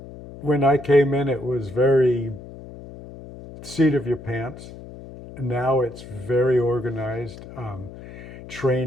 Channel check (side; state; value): left; noise; hum, 15 dB below the sound